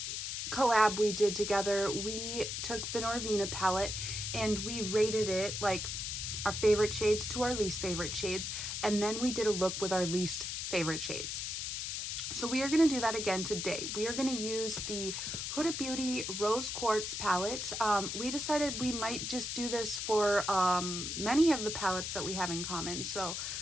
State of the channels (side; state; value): left; noise; hiss, 3 dB below the sound